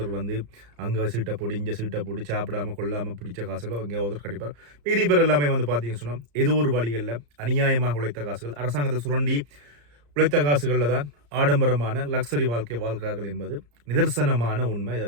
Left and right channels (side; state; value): left; late; 34 ms